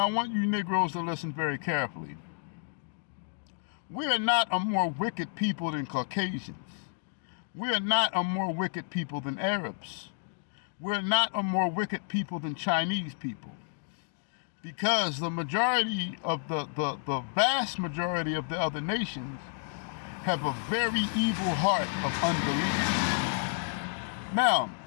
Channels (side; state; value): right; silent; digital silence